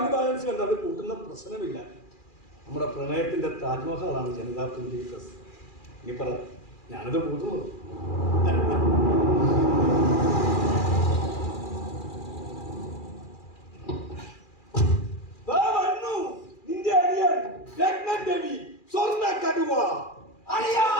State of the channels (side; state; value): right; late; 2.4 ms